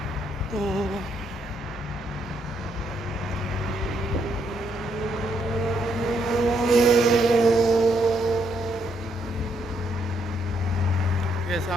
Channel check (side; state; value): both; normal; correlation 0.75